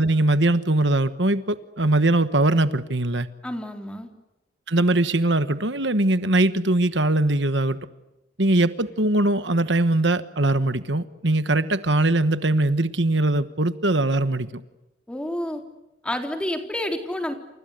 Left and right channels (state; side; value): normal; both; correlation 0.61